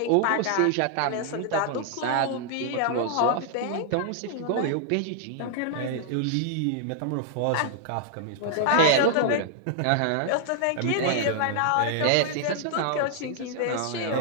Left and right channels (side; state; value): both; different; correlation -0.01